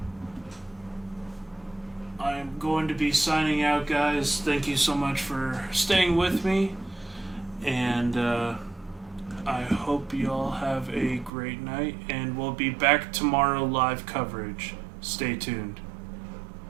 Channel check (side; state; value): left; drops out; at 11.3 s